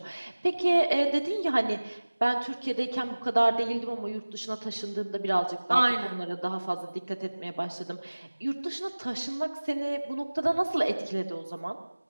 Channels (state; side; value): inverted; both; correlation -1.00